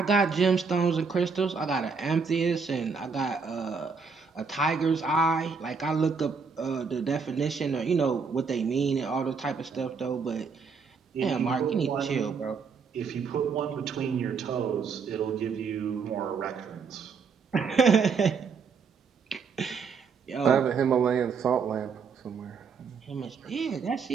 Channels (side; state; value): left; quieter; 5.4 dB